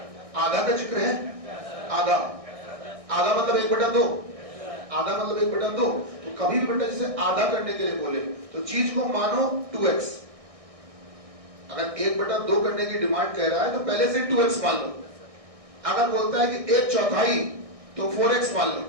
आधा का जिक्र है? आधा मतलब 1/2, आधा मतलब 1/2। तो कभी भी बेटा जैसे आधा करने के लिए बोले तो चीज को मानो 2x। अगर 1/2 करने की डिमांड कह रहा है तो पहले से 2x मान लो। अगर बोलता है कि 1/4 तो 4x मान लो।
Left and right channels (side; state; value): left; late; 1.6 ms